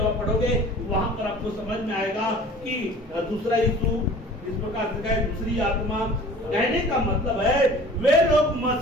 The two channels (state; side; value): normal; both; correlation 0.45